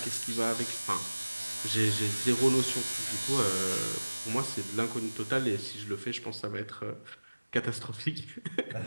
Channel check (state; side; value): inverted; both; correlation -1.00